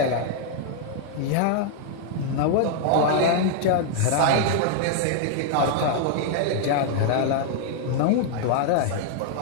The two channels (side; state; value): both; different; correlation 0.00